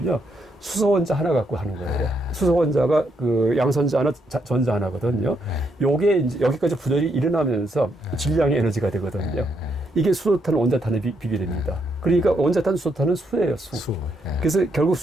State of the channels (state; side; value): normal; both; correlation 0.77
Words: 수소원자 하나 갖고 하는 거예요. 수소원자가 그 양선자 하나, 전자 하나거든요. 요게 이제 여기까지 분열이 일어나면서 질량의 에너지가 되거든요. 이게 수소탄, 원자탄에 비교됩니다. 그러니까 원자탄, 수소탄은 수예요, 수. 그래서 결국